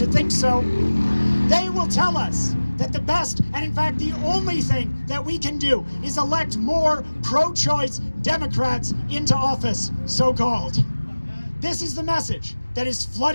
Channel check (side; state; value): both; inverted; correlation -1.00